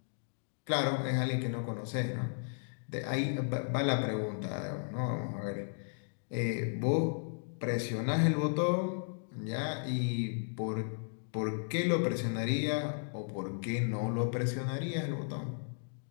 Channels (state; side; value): silent; right; digital silence